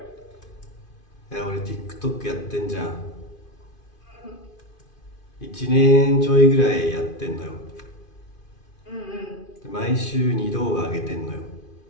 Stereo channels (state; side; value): late; right; 2.5 ms